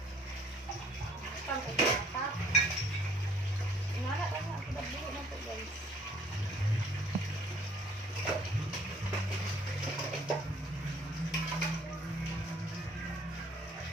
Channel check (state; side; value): normal; both; correlation 0.58